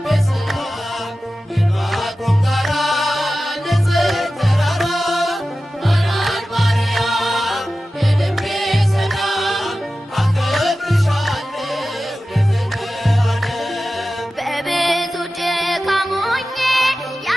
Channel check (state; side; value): normal; both; correlation 0.94